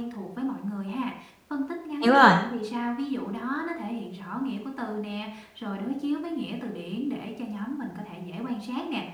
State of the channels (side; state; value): both; identical; correlation 1.00